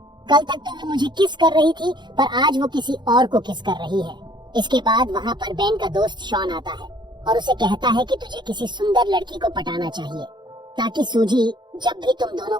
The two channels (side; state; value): left; late; 0.22 ms